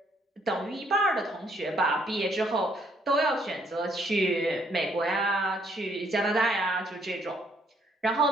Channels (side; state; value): both; normal; correlation 0.67